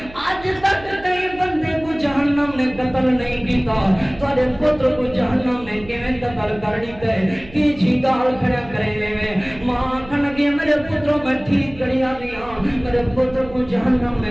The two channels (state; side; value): noise; right; hum, 19 dB below the sound